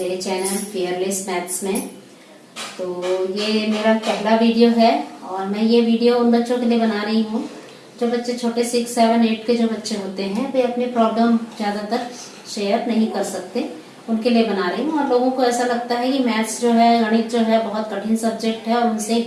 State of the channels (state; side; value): identical; both; correlation 1.00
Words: चैनल फियरलेस मैथ्स में। तो ये मेरा पहला वीडियो है और मैं ये वीडियो उन बच्चों के लिए बना रही हूँ जो बच्चे छोटे 6, 7, 8 के जो बच्चे होते हैं वे अपने प्रॉब्लम ज़्यादातर शेयर नहीं कर सकते, उनके लिए बना रही हूँ। और लोगों को ऐसा लगता है कि मैथ्स जो है, गणित जो है बहुत कठिन सब्जेक्ट है और उनसे